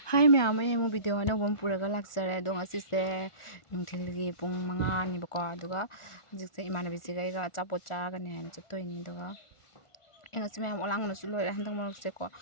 Hi ma'am, ay mo video na bom puraga laksare dong asise nungthilgi pung 5 ni bako aduga hojikse imanabi sigaiga achapot chagani haina chattoini duga engasi ma'am olang na su loira handang marokse ko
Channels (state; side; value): late; right; 1.4 ms